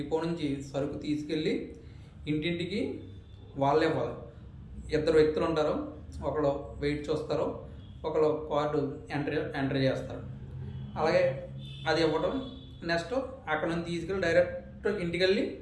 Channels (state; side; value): identical; both; correlation 1.00